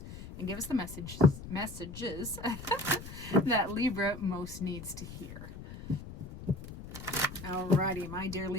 and give us the messages that Libra most needs to hear. Alrighty, my dear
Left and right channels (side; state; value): left; noise; rumble, 12 dB below the sound